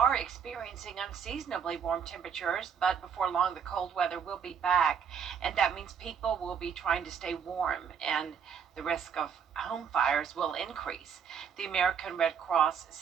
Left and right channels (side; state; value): left; quieter; 7.2 dB